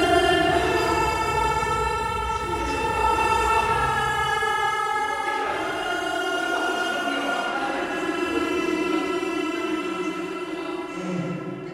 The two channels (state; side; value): identical; both; correlation 1.00